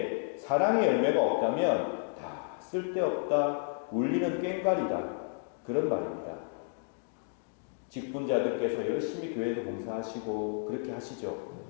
사랑의 열매가 없다면 다 쓸데없다, 울리는 꽹과리다, 그런 말입니다. 직분자들께서 열심히 교회도 봉사하시고 그렇게 하시죠.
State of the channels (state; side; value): silent; right; 57 dB below the other